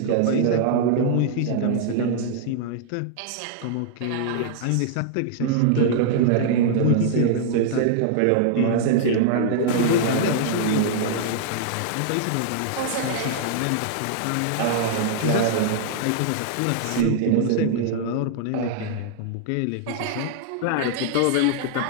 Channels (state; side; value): different; both; correlation -0.01